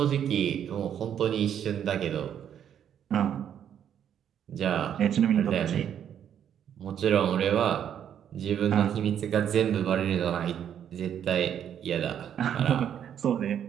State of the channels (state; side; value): quieter; left; 9.3 dB